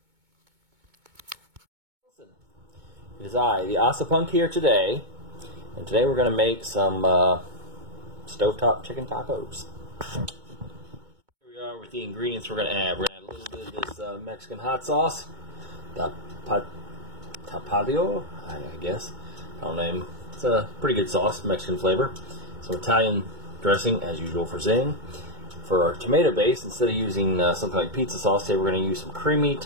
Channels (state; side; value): late; left; 2.2 ms